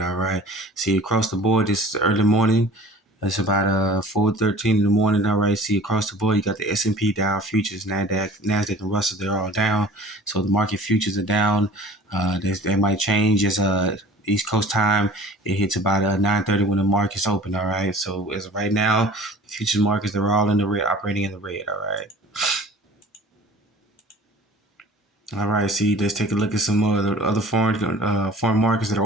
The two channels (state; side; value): normal; both; correlation 0.45